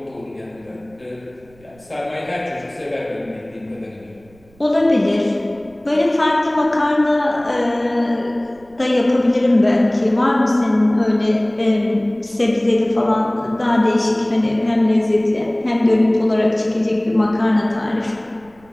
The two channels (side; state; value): right; noise; rumble, 29 dB below the sound